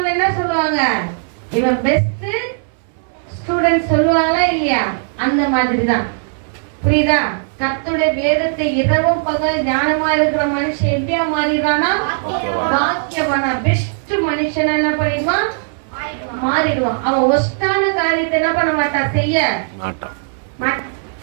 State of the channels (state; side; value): silent; left; 62 dB below the other